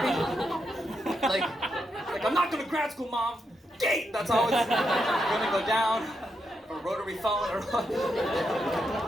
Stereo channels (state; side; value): normal; both; correlation 0.83